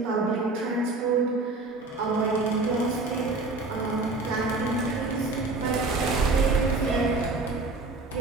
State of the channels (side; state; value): left; quieter; 3.3 dB